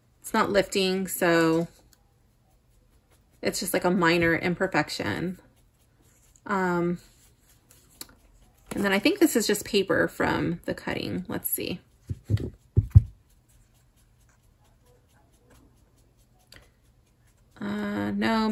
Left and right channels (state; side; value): identical; both; correlation 1.00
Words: It's not lifting, so it's just like a minor imperfection. And then I think this is just paper from the cutting. Let's see. No,